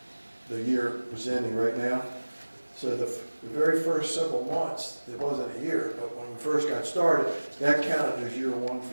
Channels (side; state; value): both; inverted; correlation -1.00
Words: the year was ending right now. So the very first several months, it wasn't a year, but when we first got started, that counted as year 1 for